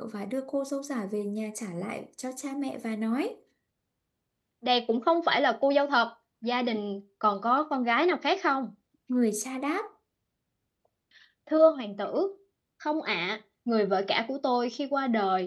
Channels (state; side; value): identical; both; correlation 1.00